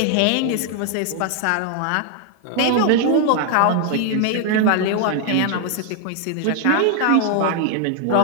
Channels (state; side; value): different; both; correlation 0.00